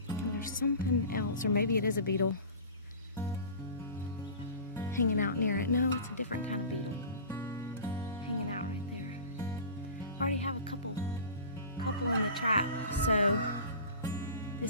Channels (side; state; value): both; inverted; correlation -0.38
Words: and there's something else, or maybe it is a beetle hanging out near it. No, it's a different kind of beetle hanging out right there. I already have a couple in the trap, so